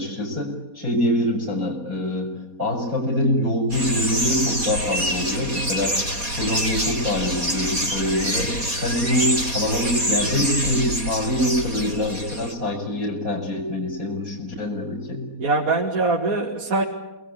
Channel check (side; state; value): left; late; 4.2 ms